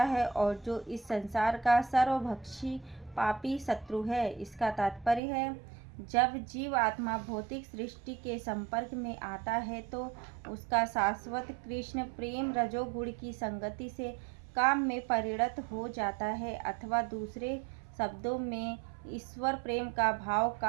है और जो इस संसार का सर्वभक्षी पापी शत्रु है। इसका तात्पर्य है, जब जीव आत्मा भौतिक सृष्टि के संपर्क में आता है तो उसका शाश्वत कृष्ण प्रेम रजोगुण की संगति से काम में परिणत हो जाता है, अथवा दूसरे शब्दों में ईश्वर प्रेम का भाव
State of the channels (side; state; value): left; drops out; at 5.2 s